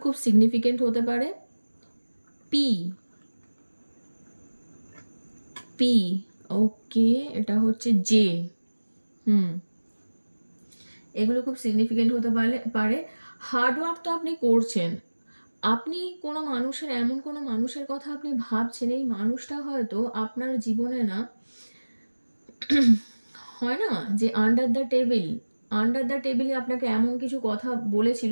খুব সিগনিফিকেন্ট হতে পারে। পি, ওকে, এটা হচ্ছে জে, এগুলো খুব সিগনিফিকেন্ট হতে পারে। হার্ডওয়ার্ক তো আপনি করছেন, আপনি এমন কোনো মানুষের কথা আপনি ভাবছেন, এই মানুষটা হয়তো আপনার জীবনে না হয় না যে আন্ডার দ্য টেবিলে আপনাকে এমন কিছু কথা বলেছিল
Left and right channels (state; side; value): inverted; both; correlation -1.00